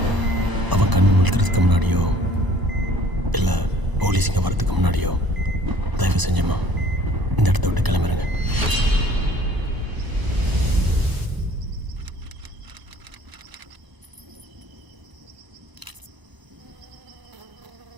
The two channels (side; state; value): left; late; 1.0 ms